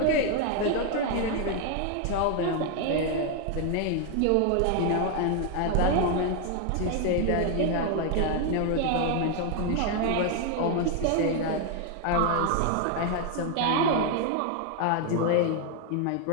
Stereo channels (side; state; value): both; different; correlation 0.01